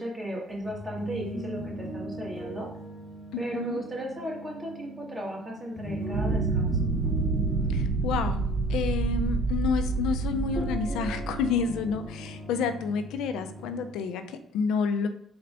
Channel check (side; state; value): both; normal; correlation 0.48